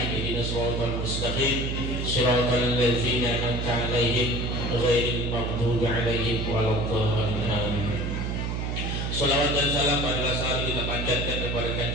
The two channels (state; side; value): noise; right; hum, 2 dB below the sound